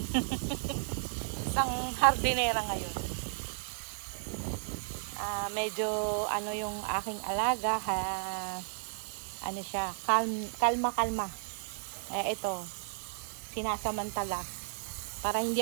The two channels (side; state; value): left; silent; digital silence